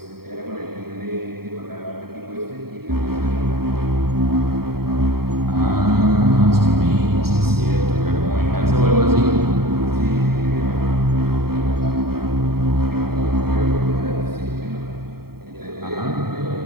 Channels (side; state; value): left; late; 0.95 ms